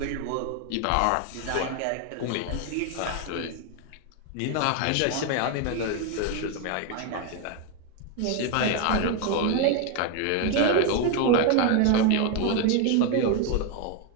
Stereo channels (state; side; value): different; both; correlation 0.01